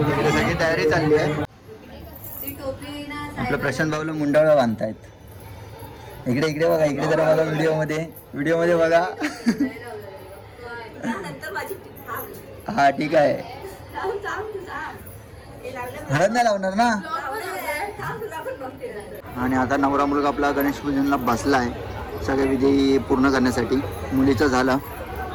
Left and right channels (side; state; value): both; identical; correlation 1.00